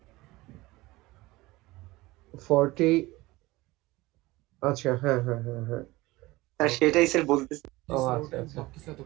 40, আচ্ছা হ্যাঁ হ্যাঁ হ্যাঁ হ্যাঁ স্যার সেটাই স্যার বলতেছি। ও আচ্ছা আচ্ছা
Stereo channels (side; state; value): left; quieter; 20.0 dB